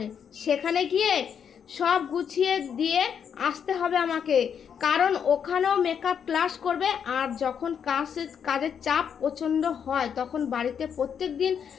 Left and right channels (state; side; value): quieter; right; 7.7 dB